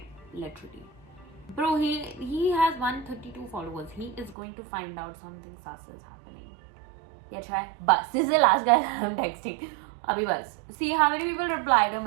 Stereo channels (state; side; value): drops out; left; at 4.4 s